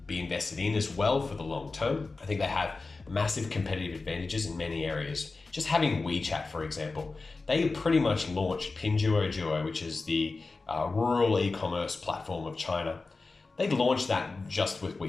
be invested in as well for the long term. I think they have massive competitive advantages in many areas. Just having WeChat, for example, they pretty much launched Pinduoduo, which is the rural e-commerce platform of China. They launched that just with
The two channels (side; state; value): right; quieter; 3.8 dB